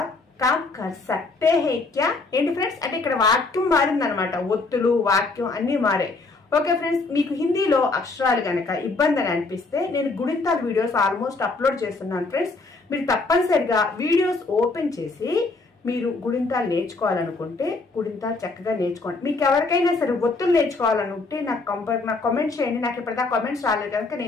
కామ్ కర్ సక్తే హే క్యా. ఏంటి ఫ్రెండ్స్, అంటే ఇక్కడ వాక్యం మారిందనమాట, ఒత్తులు వాక్యం అన్ని మారాయి. ఓకే ఫ్రెండ్స్, మీకు హిందీలో అక్షరాలు గనక ఇబ్బంది అని అనిపిస్తే నేను గుణింతాల వీడియోస్ ఆల్మోస్ట్ అప్లోడ్ చేస్తున్నాను ఫ్రెండ్స్. మీరు తప్పనిసరిగా వీడియోస్ ఓపెన్ చేసి మీరు గుణింతాలు నేర్చుకోవాలనుకుంటే గుణింతాలు చక్కగా నేర్చుకోండి. మీకు ఎవరికైనా సరే ఒత్తులు నేర్చుకోవాలనుకుంటే నాకు కామెంట్ చేయండి. నాకు ఇప్పటిదాకా కామెంట్స్ రాలేదు కనుక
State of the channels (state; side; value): quieter; right; 3.6 dB